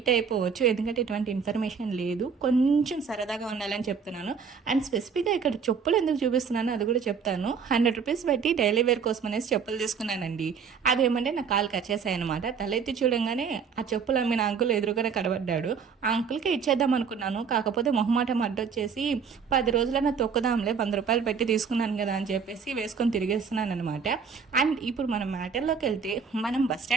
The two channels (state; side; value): quieter; left; 6.2 dB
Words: అయిపోవచ్చు, ఎందుకంటే ఎటువంటి ఇన్ఫర్మేషన్ లేదు. కొంచెం సరదాగా ఉండాలని చెప్తున్నాను. అండ్ స్పెసిఫిక్గా ఇక్కడ చెప్పులు ఎందుకు చూపిస్తున్నాను అది కూడా చెప్తాను. 100 రూపీస్ పెట్టి డైలీ వేర్ కోసం అనేసి చెప్పులు తీసుకున్నానండి. అదేమంటే నా కాలు కచ్చేసాయి అనమాట. తలెత్తి చూడంగానే ఆ చెప్పులు అమ్మిన అంకుల్ ఎదురుగానే కనబడ్డాడు. ఆ అంకుల్కి ఇచ్చేద్దాం అనుకున్నాను. కాకపోతే మొహమాటం అడ్డొచ్చేసి 10 రోజులైనా తొక్కుదాంలే, 100 రూపాయలు పెట్టి తీసుకున్నాను కదా అని చెప్పేసి వేసుకొని తిరిగేస్తున్నాను అనమాట. అండ్ ఇప్పుడు మనం మ్యాటర్లోకి వెళ్తే, మనం బస్